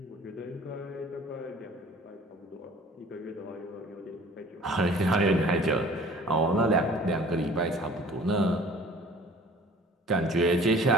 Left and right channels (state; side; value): normal; both; correlation 0.48